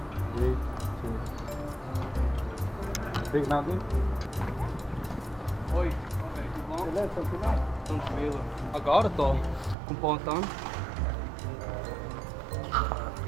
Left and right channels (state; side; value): drops out; left; at 9.8 s